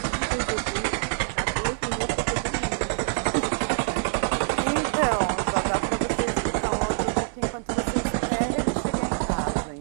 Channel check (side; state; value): left; silent; 61 dB below the other